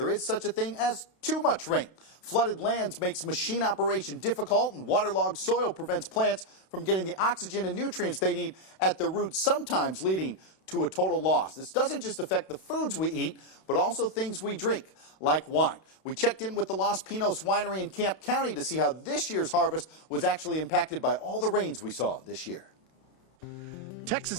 is such a thing as too much rain. Flooded lands makes machine operation difficult, and waterlogged soil prevents plants from getting the oxygen and nutrients they need at the roots, sometimes leading to a total loss. This doesn't just affect the foods we eat, but also things we drink, like wine. We checked in with the Los Pinos Winery in Camp County to see how this year's harvest was actually impacted by all the rains we saw this year. Texas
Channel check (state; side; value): late; right; 32 ms